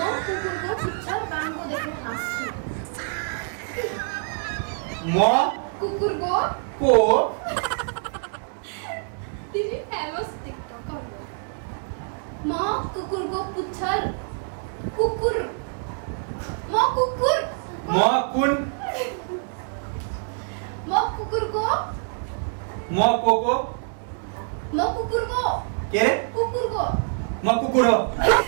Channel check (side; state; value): left; silent; 57 dB below the other